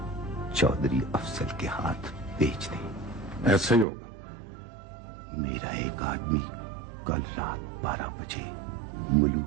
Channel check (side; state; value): left; drops out; at 3.9 s